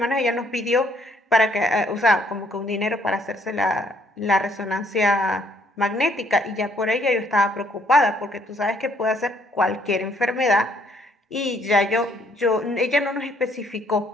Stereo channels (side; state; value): both; normal; correlation 0.66